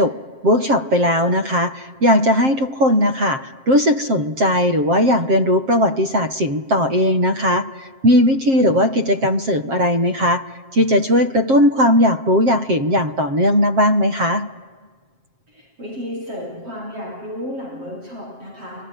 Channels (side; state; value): left; late; 7.5 ms